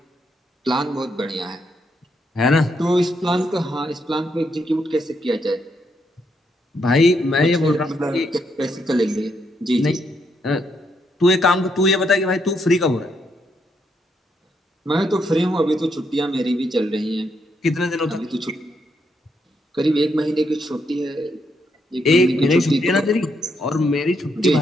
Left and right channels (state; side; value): normal; both; correlation 0.77